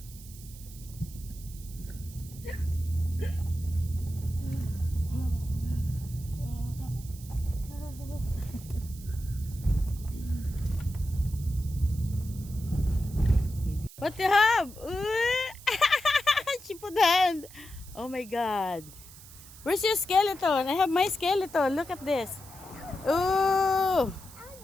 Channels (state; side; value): noise; right; hiss, 18 dB below the sound